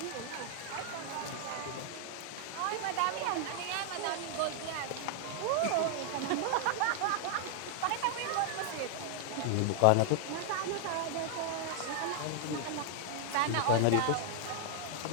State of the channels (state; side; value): different; both; correlation 0.00